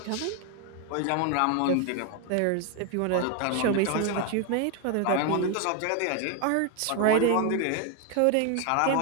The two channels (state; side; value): different; both; correlation 0.01